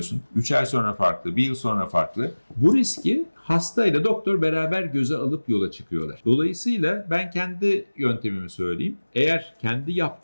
3 ay sonra farklı, 1 yıl sonra farklı. Bu riski hastayla doktor beraber göze alıp yola çıkıyorlar. Dolayısıyla ben kendi yöntemimi söyleyeyim. Eğer kendi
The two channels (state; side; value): inverted; both; correlation -1.00